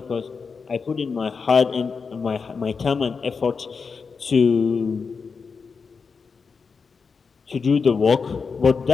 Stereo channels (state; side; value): quieter; right; 5.2 dB